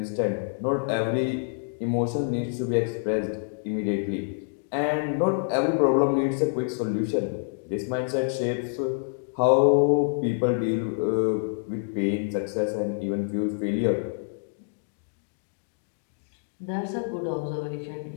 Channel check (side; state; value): right; silent; digital silence